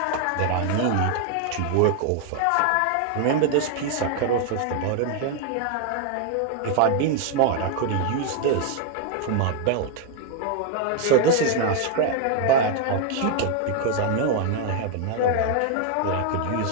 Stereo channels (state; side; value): different; both; correlation 0.00